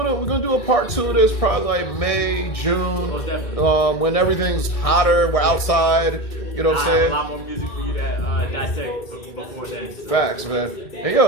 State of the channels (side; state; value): right; late; 1.7 ms